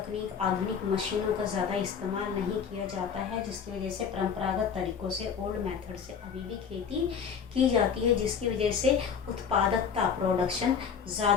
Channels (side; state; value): right; quieter; 6.8 dB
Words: आधुनिक मशीनों का ज़्यादा इस्तेमाल नहीं किया जाता है, जिसकी वजह से परंपरागत तरीक़ों से, ओल्ड मेथड से अभी भी खेती की जाती है, जिसकी वजह से उत्पादकता, प्रोडक्शन